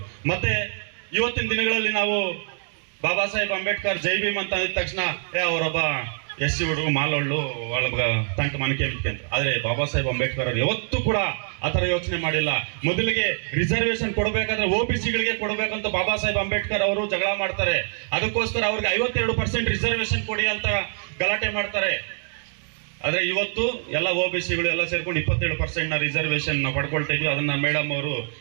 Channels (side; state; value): left; silent; 56 dB below the other